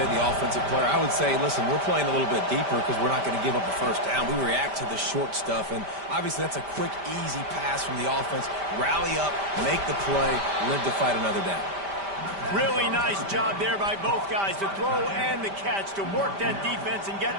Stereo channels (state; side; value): late; left; 5.1 ms